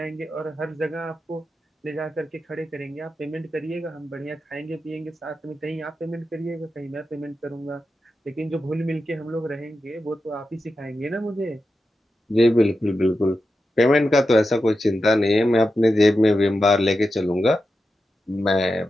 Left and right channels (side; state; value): both; normal; correlation 0.90